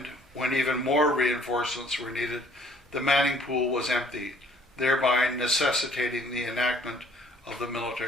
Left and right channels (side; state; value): both; normal; correlation 0.59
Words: when even more reinforcements were needed, the manning pool was empty, thereby necessitating the enactment of the